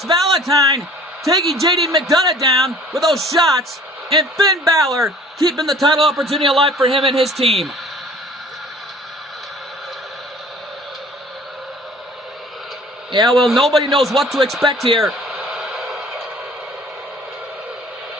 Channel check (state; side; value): normal; both; correlation 0.50